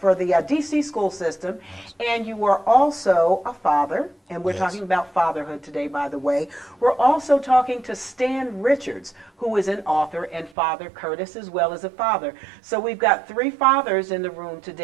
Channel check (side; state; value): left; drops out; at 10.5 s